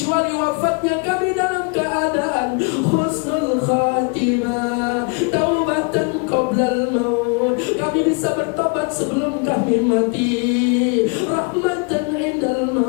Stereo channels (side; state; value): right; quieter; 34.9 dB